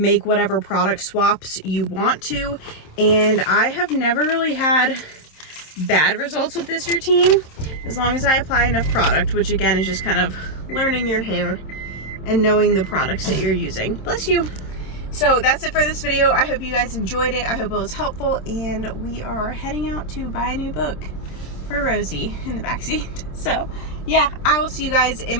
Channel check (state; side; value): late; right; 27 ms